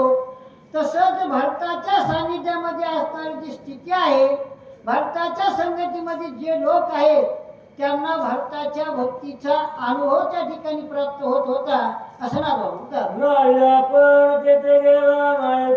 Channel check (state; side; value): identical; both; correlation 1.00